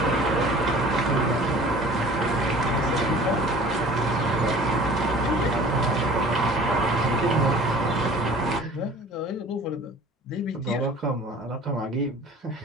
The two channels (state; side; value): normal; both; correlation 0.46